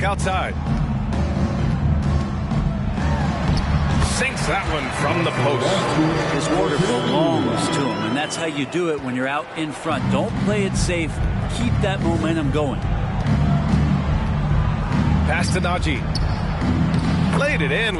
outside. Sinks that one from the post. His order belongs to him, and that's how you do it when you're out in front. Don't play it safe. Keep that momentum going. Pass to Najee. Played it in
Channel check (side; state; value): both; identical; correlation 1.00